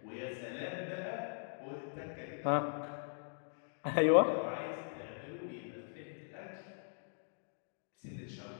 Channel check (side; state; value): right; silent; digital silence